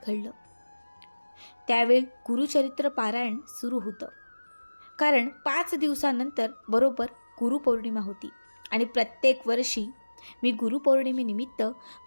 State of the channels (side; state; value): both; inverted; correlation -1.00